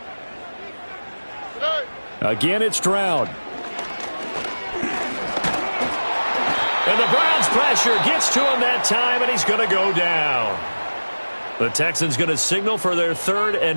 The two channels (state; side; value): inverted; both; correlation -1.00